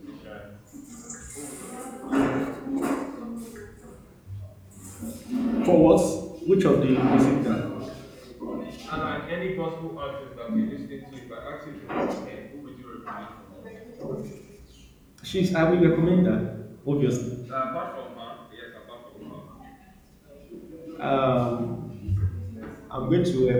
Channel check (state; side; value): identical; both; correlation 1.00